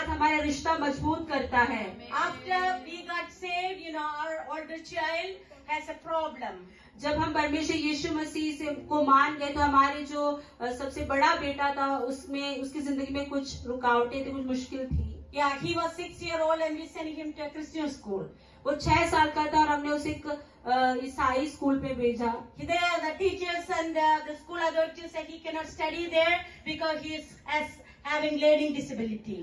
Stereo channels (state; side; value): identical; both; correlation 1.00